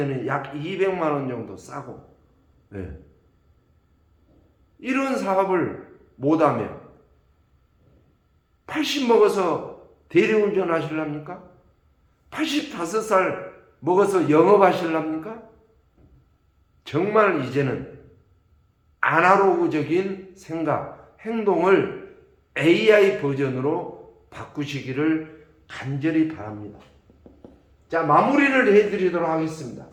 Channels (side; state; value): both; identical; correlation 1.00